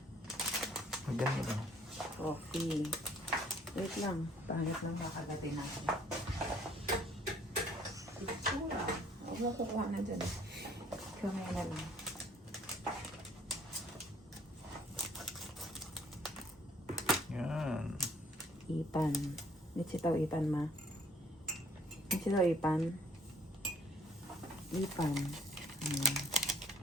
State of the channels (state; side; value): normal; both; correlation 0.60